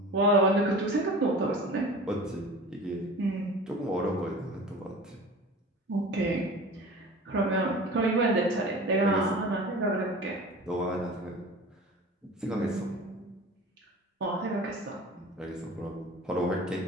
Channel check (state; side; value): normal; both; correlation 0.38